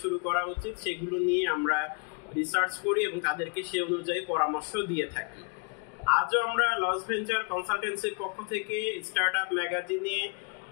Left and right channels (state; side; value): quieter; right; 35.5 dB